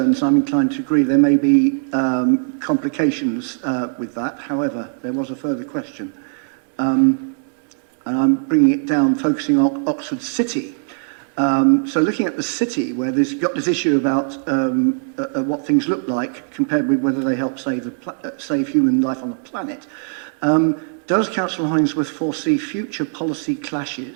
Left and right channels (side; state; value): left; silent; 66 dB below the other